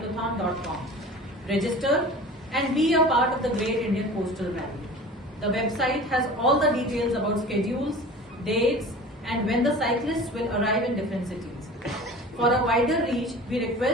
Register and be a part of the Great Indian Coastal Rally. The website has all the details about schedules, dates, and when the cyclists will arrive in different cities. For a wider reach, we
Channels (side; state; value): both; normal; correlation 0.39